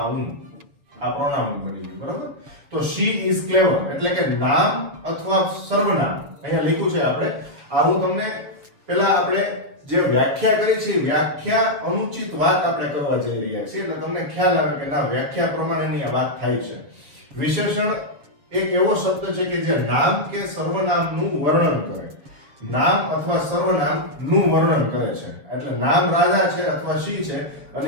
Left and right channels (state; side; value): late; left; 7.1 ms